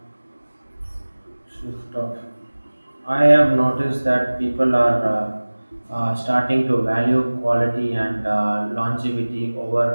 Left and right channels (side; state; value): both; inverted; correlation -1.00